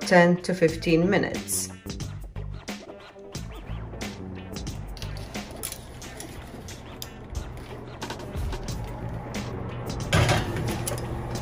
to 15 minutes.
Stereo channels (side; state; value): both; identical; correlation 1.00